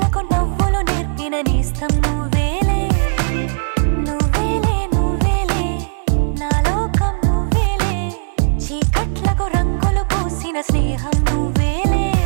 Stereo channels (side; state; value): left; silent; digital silence